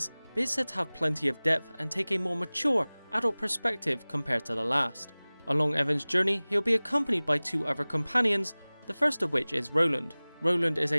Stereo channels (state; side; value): inverted; both; correlation -1.00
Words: but is said to have plenty of depth and take a more mature, adult perspective compared to the last. Along Evan's journey, he'll be accompanied by two other companions, the first of which is Roland. Roland is